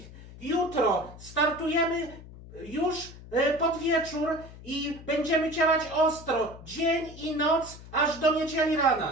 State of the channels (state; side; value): noise; left; hum, 17 dB below the sound